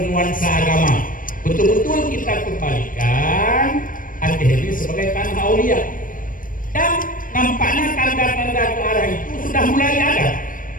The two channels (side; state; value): right; late; 0.40 ms